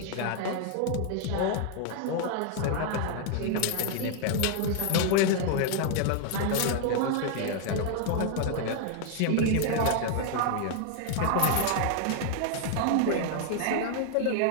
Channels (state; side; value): different; both; correlation 0.00